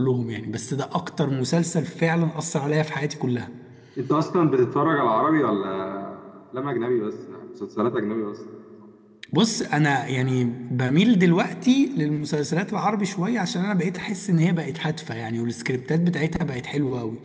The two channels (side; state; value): both; identical; correlation 1.00